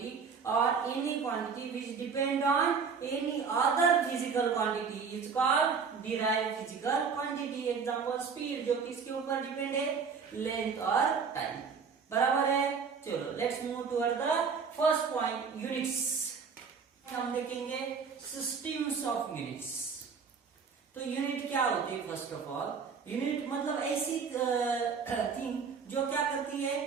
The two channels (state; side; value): quieter; left; 5.8 dB